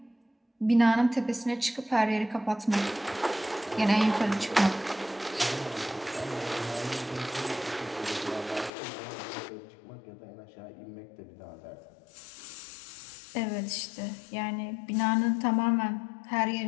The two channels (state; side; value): drops out; right; at 8.7 s